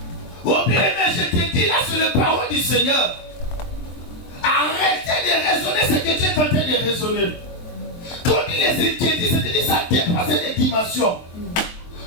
Au bien, je te dis là, c'est la parole du Seigneur. Arrêtez de raisonner ce que tu es en train de raisonner. Quand il les inquiétudes, c'est-à-dire ça dépasse les dimensions.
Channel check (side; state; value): right; late; 23 ms